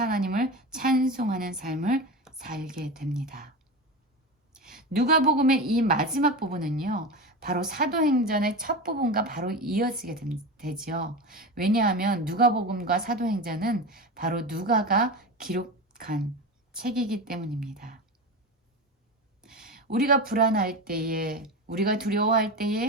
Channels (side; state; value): both; normal; correlation 0.24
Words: 하나님을 찬송하는 삶을 살게 됩니다. 누가복음의 이 마지막 부분은요, 바로 사도행전의 첫 부분과 바로 이어지게 되죠. 왜냐하면 누가복음과 사도행전은 바로 누가가 기록한 책이기 때문입니다. 우리가 불안할 때에, 우리가 두려워할